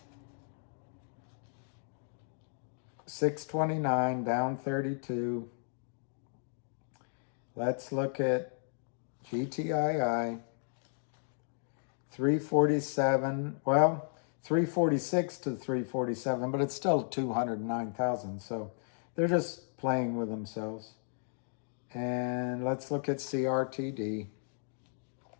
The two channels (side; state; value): right; silent; digital silence